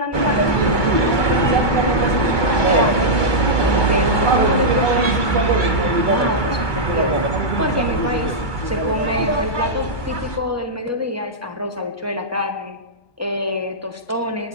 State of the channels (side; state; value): right; late; 1.2 ms